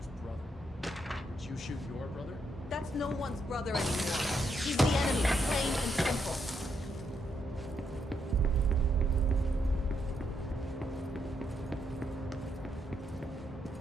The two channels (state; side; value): normal; both; correlation 0.78